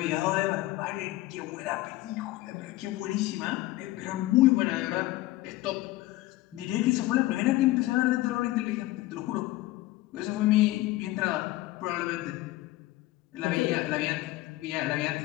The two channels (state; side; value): quieter; right; 17.6 dB